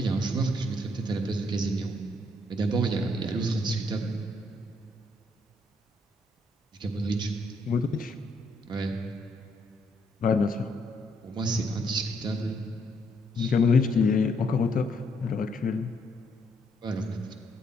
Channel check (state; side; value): normal; both; correlation 0.72